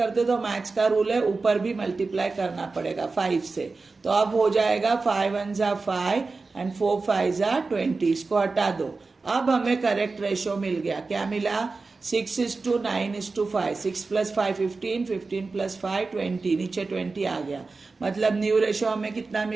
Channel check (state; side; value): quieter; left; 4.0 dB